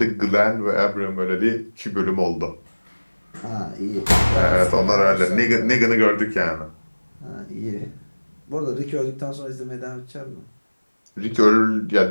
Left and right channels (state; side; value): inverted; both; correlation -1.00